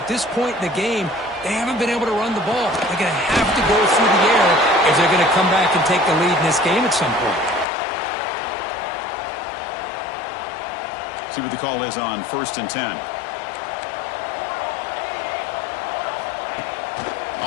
this point in the game, they haven't been able to run the ball. They're going to have to go through the air if they're going to come back and take the lead in this game at some point. See what the call is on 1st and 10.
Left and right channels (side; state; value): right; drops out; at 7.7 s